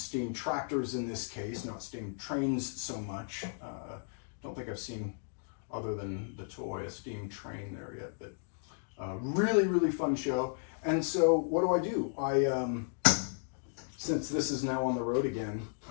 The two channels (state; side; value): silent; right; digital silence